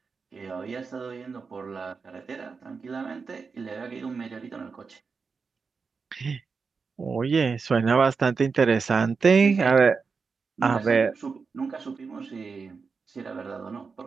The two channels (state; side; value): quieter; left; 5.0 dB